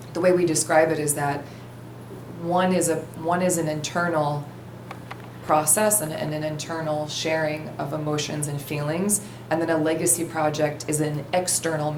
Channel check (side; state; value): both; identical; correlation 1.00